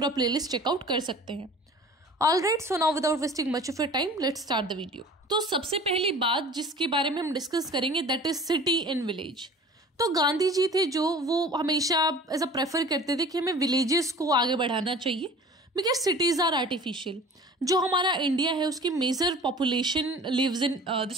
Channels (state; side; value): normal; both; correlation 0.44